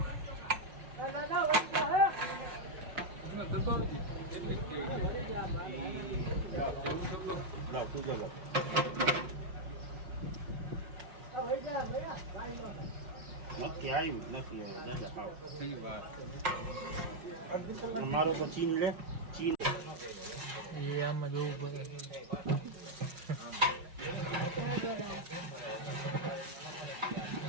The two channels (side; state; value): left; late; 5.4 ms